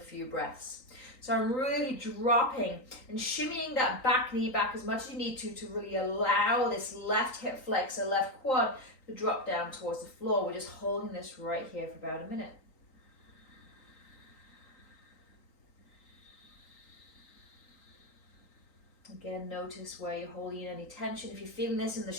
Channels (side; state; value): right; late; 3.9 ms